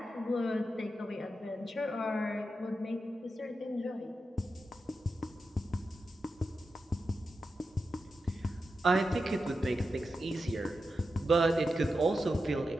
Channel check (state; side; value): normal; both; correlation 0.89